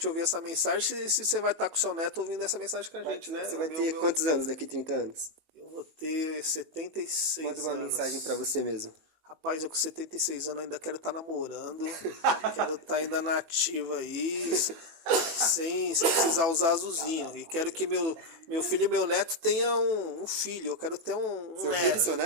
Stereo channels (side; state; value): left; late; 18 ms